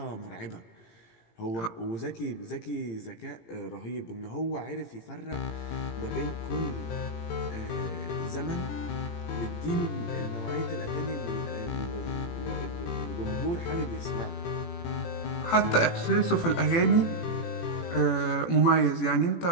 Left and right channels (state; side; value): late; right; 18 ms